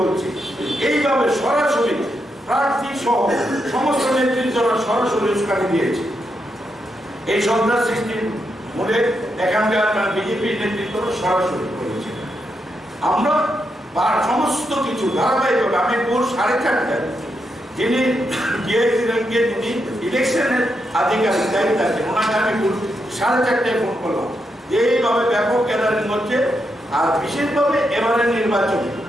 বলছে। এইভাবে সরাসরি প্রার্থী সহ সমস্ত নেতৃত্বরা সরাসরি উস্কানি দিয়েছে। এই সন্ত্রাস সৃষ্টির মূলে এখানকার বিজেপির নেতৃত্ব সরাসরি করেছে। আমরা সমস্ত কিছু ধারাবাহিকভাবে আমি ভোর 4:30টায় যিনি ডিআইসি র্যাঙ্কে যিনি ইলেকশনের আধিকারিক দায়িত্ব আছেন ওনাকে আমি 4:30টায় ফোন করলাম, এইভাবে ব্যাপক গ্যাদারিং হচ্ছে। আর বিশেষভাবে এবারের নির্বাচন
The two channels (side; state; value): both; normal; correlation 0.83